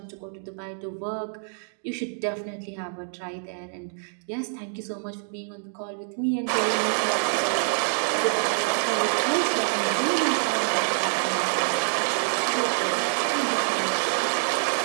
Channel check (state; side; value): silent; left; digital silence